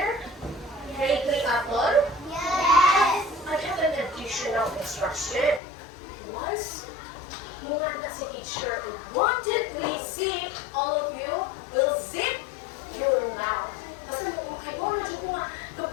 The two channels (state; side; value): drops out; right; at 5.6 s